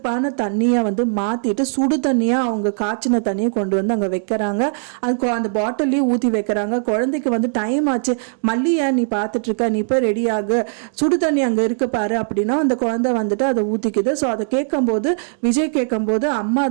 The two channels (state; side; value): silent; left; digital silence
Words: தண்ணியை மாத்திட்டு சுடு தண்ணியா அவங்க காய்ச்சின தண்ணியை கொண்டு அங்க வைக்கிறாங்க. அது அந்த பாட்டிலையும் ஊத்தி வைக்கிறாங்க. குழந்தைக்கு டைம் ஆச்சு, மல்லியா நீ பார்த்துட்டு இருக்க, நீ போய் ரெடி ஆகு, சுடு தண்ணி அங்கே இருக்கு பாரு அப்படின்னா அந்த குழந்தை அதை ஊற்றிக்குது. ஸோ அதை கேட்கும்போது விஜய் கேட்கும்போது அம்மா